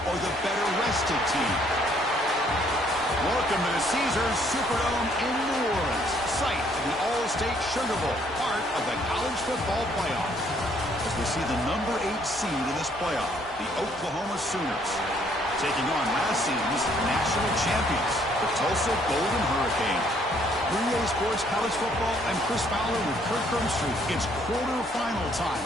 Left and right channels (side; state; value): both; normal; correlation 0.65